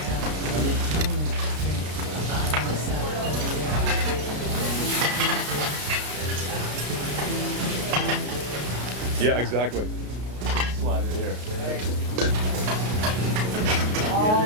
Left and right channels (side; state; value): left; late; 33 ms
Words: Yeah, exactly. Slide it here.